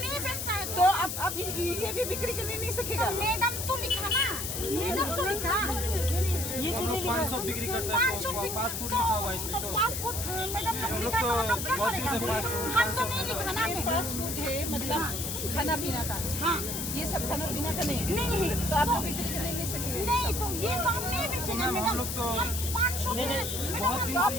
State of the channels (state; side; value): noise; left; hiss, 4 dB below the sound